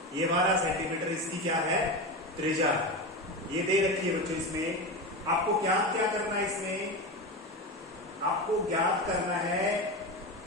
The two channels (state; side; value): normal; both; correlation 0.21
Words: ये 12 सेंटीमीटर इसकी क्या है, त्रिज्या ये दे रखी है बच्चों। इसमें आपको क्या करना है, इसमें आपको ज्ञात करना है